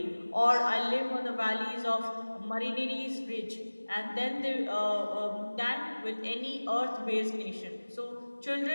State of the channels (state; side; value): inverted; both; correlation -1.00